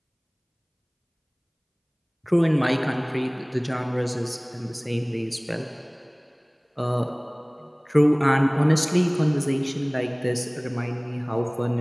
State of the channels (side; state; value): both; identical; correlation 1.00